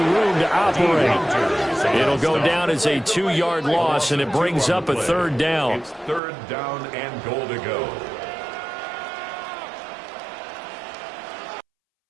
room to operate. It'll go down as a 2-yard loss, and it brings up a 3rd down. It's 3rd down and goal to go.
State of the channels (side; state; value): left; drops out; at 6.2 s